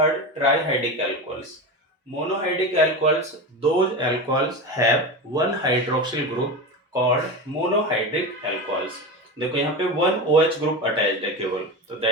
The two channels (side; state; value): both; normal; correlation 0.23